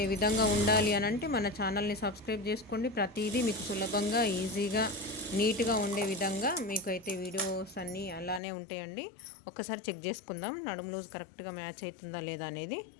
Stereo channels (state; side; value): drops out; right; at 8.4 s